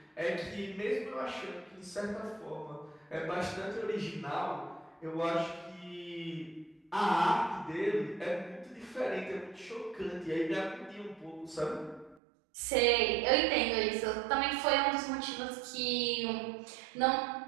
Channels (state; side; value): drops out; left; at 12.2 s